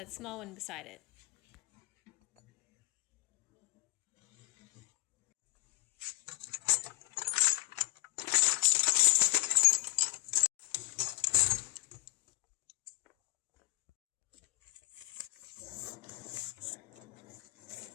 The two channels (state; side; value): quieter; right; 21.9 dB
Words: small one beside it.